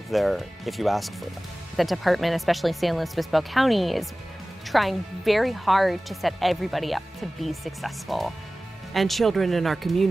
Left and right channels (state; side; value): normal; both; correlation 0.97